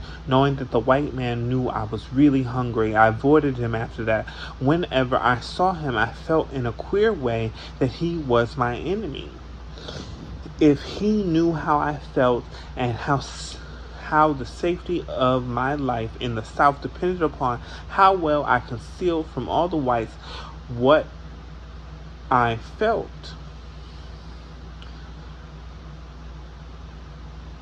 knowing that the white man knew I was really hungry. I avoided him after that. Whenever I saw him, I felt in a queer way that he was my enemy. If he knew how I felt and how the safety of my life in the South depended upon how well I concealed from all the whites what I felt.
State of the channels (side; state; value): both; identical; correlation 1.00